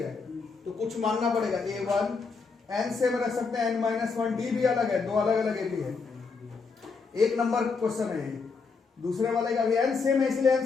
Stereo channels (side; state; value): right; quieter; 4.8 dB